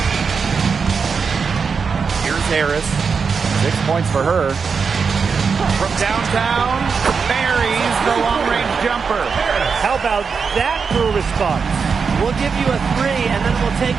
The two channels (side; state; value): left; quieter; 5.6 dB